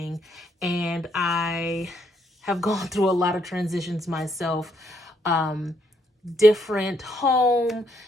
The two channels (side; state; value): both; normal; correlation 0.73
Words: and I have gone through a lot of transitions myself. Different home,